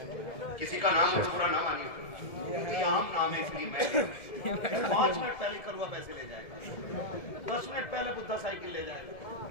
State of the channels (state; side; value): late; right; 1.7 ms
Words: کسی کا نام بھورا نہ مانی، کیونکہ یہ عام نام ہے اس لیے میں 5 منٹ پہلے کروا پیسے لے جائے گا، 10 منٹ پہلے بدھا سائیکل لے جائے گا.